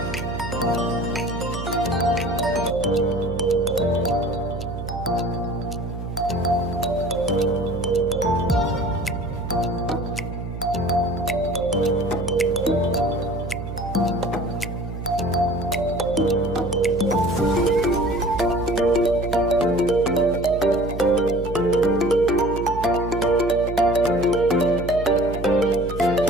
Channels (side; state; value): right; noise; hum, 8 dB below the sound